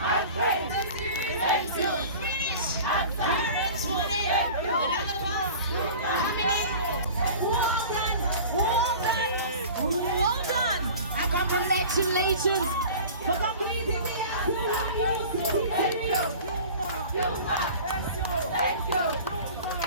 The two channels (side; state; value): both; inverted; correlation -0.40